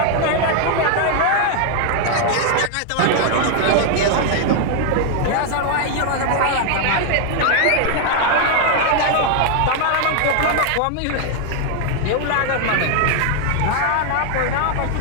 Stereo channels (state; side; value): different; both; correlation 0.00